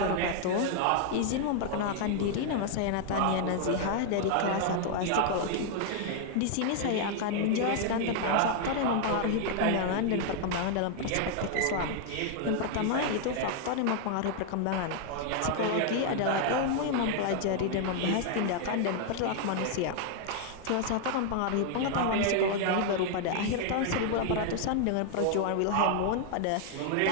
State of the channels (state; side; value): different; both; correlation 0.00